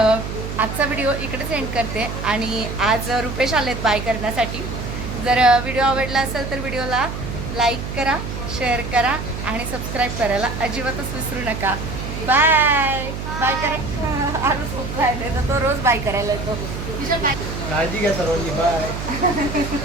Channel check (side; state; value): right; noise; hum, 6 dB below the sound